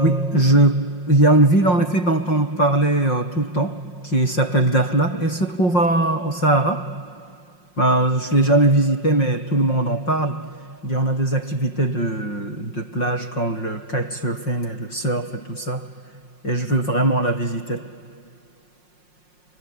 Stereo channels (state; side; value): late; right; 5.6 ms